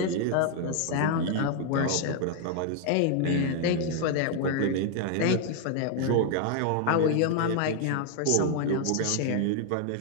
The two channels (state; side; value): different; both; correlation 0.00